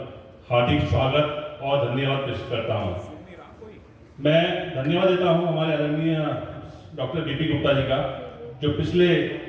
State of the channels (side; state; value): both; identical; correlation 1.00